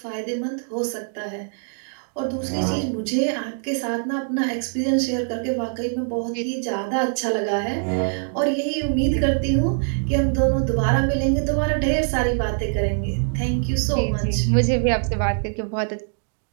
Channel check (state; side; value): silent; left; digital silence